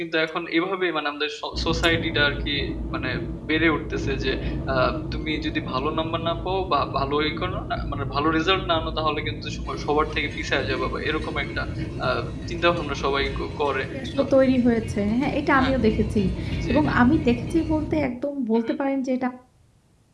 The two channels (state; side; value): identical; both; correlation 1.00